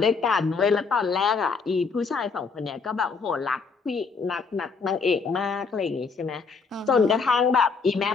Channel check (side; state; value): right; quieter; 5.0 dB